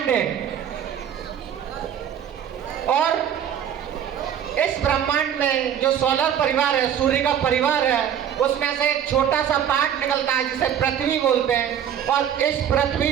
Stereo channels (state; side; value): quieter; left; 9.3 dB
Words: हैं, और इस ब्रह्मांड में जो सोलर परिवार है, सूर्य का परिवार है, उसमें से एक छोटा सा पार्ट निकलता है जिसे पृथ्वी बोलते हैं। और इस